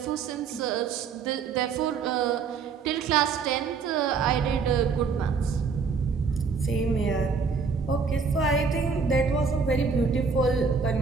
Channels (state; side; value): quieter; left; 5.3 dB